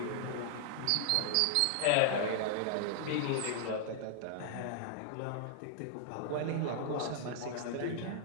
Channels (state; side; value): different; both; correlation -0.01